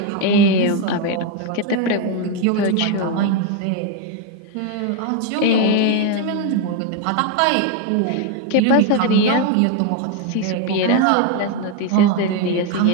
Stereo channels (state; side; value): different; both; correlation 0.02